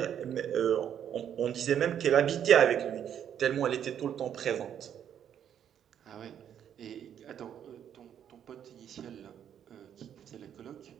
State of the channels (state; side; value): quieter; left; 9.3 dB